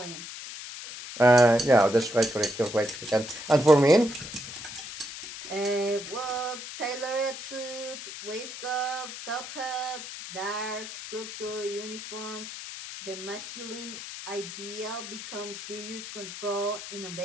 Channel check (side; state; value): left; noise; hiss, 10 dB below the sound